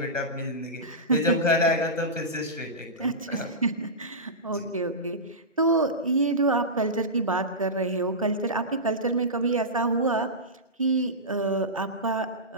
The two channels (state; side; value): normal; both; correlation -0.16